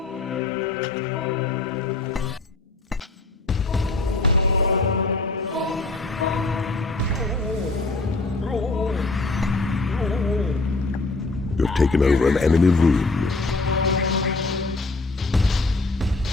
You have taken over an enemy room.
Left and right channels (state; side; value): quieter; right; 3.3 dB